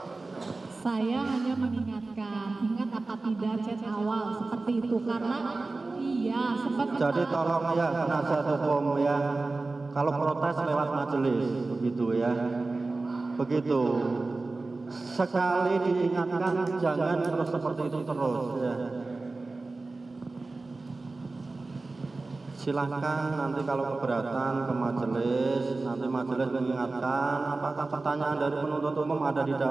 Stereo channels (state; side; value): quieter; left; 3.5 dB